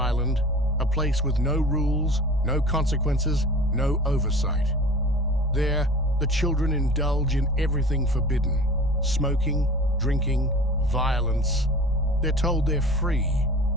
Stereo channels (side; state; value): both; normal; correlation 0.40